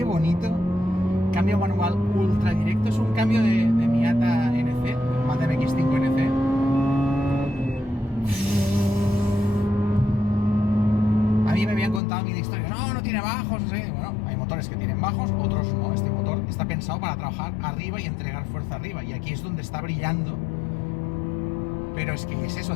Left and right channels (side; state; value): right; drops out; at 12.0 s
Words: bonito. Cambio manual ultra directo. Es un cambio de Miata NC, Mazda MX-5 NC. Me habían contado mil historias, no tiene bajos, no sé. Bueno, hay motores que tienen bajos, otros no. Este motor está pensado para trabajar arriba y entregar fuerza arriba, y aquí es donde está brillando. Pero es que es eso,